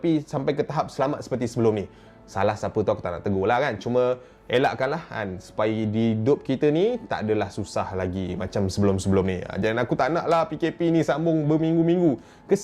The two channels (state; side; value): identical; both; correlation 1.00